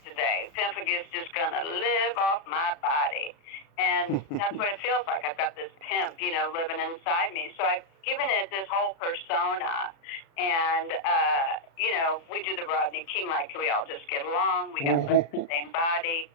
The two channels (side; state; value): right; late; 36 ms